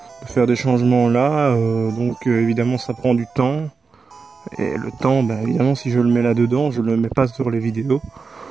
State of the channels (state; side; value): quieter; left; 4.8 dB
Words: faire des changements là, donc évidemment ça prend du temps. Et le temps, bah, évidemment si je le mets là dedans, je le mets pas sur les vidéos.